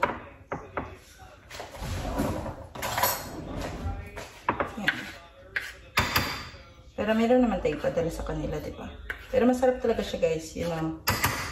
yan. Pero meron naman tayo padala sa kanila, diba? Pero masarap talaga siya guys, you know.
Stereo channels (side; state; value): both; identical; correlation 1.00